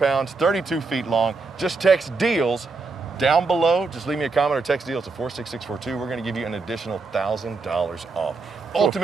32 feet long. Just text deals down below. Just leave me a comment or text deals to 46642. We're going to give you an additional $1,000 off.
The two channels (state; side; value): quieter; left; 4.0 dB